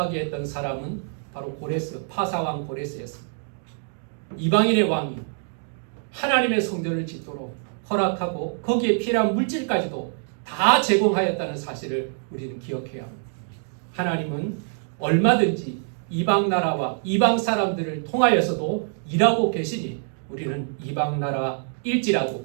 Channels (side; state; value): left; silent; 62 dB below the other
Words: 했던 사람은 바로 고레스, 파사왕 고레스였습니다. 이방인의 왕이 하나님의 성전을 짓도록 허락하고 거기에 필요한 물질까지도 다 제공하였다는 사실을 우리는 기억해야 합니다. 하나님은 얼마든지 이방 나라와 이방 사람들을 통하여서도 일하고 계시니 우리는 이방 나라일지라도